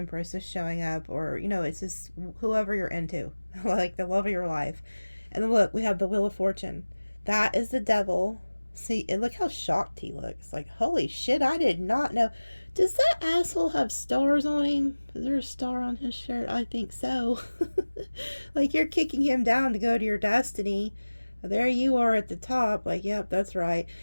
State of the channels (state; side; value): inverted; both; correlation -1.00